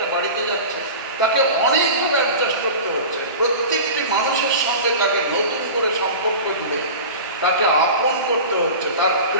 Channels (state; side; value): inverted; both; correlation -0.33